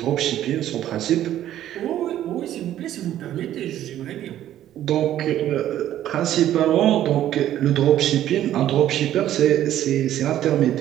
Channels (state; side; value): quieter; left; 12.2 dB